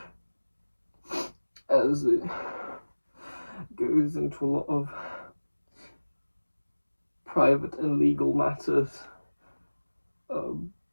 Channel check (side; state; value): both; inverted; correlation -1.00